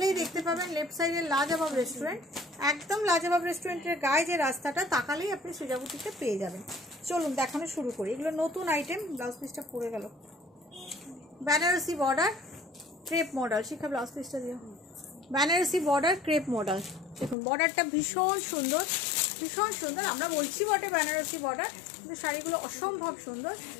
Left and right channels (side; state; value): right; drops out; at 17.4 s